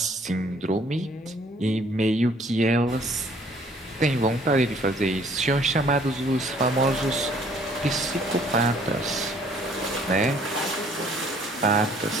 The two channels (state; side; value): normal; both; correlation 0.59